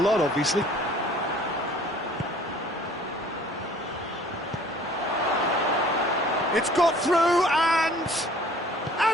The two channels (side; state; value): both; normal; correlation 0.52